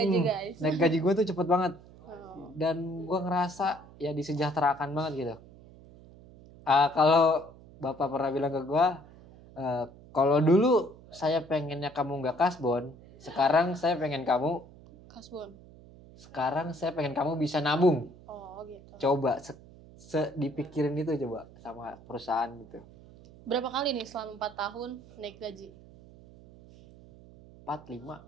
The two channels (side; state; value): right; noise; hum, 21 dB below the sound